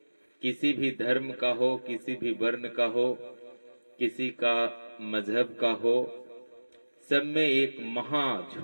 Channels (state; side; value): inverted; both; correlation -1.00